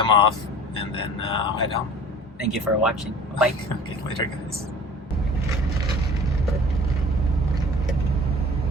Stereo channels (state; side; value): normal; both; correlation 0.45